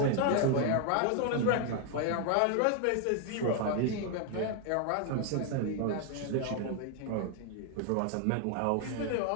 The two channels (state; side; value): different; both; correlation 0.01